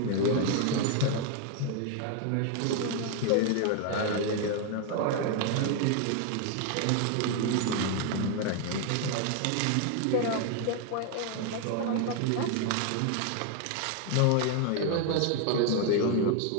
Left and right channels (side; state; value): both; different; correlation 0.01